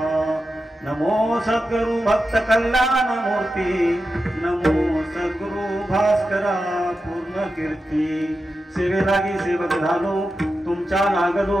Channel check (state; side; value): normal; both; correlation 0.90